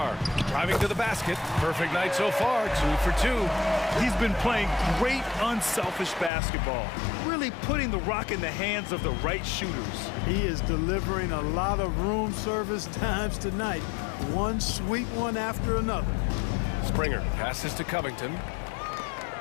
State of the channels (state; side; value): drops out; right; at 6.3 s